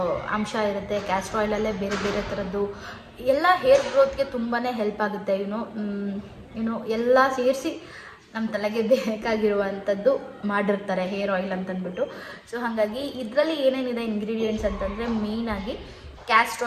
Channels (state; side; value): identical; both; correlation 1.00